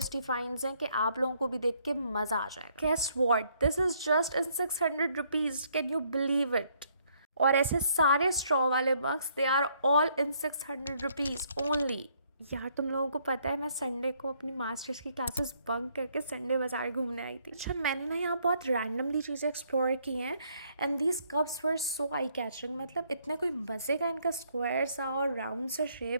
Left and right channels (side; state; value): both; inverted; correlation -0.68